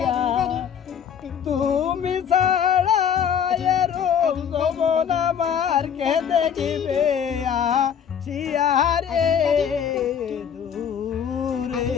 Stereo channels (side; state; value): right; quieter; 8.0 dB